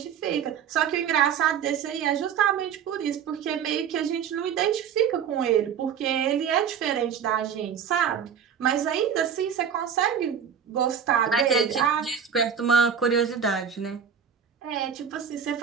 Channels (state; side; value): quieter; left; 7.8 dB